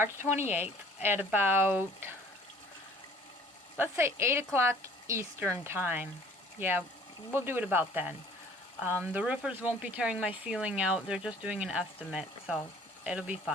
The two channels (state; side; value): normal; both; correlation 0.54